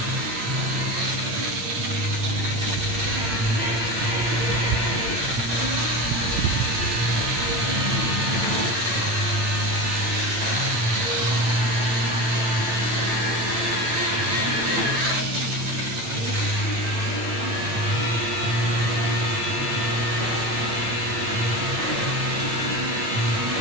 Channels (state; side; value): late; left; 8.9 ms